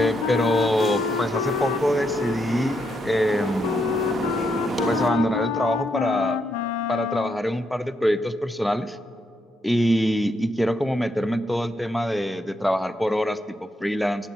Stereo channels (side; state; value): both; normal; correlation 0.79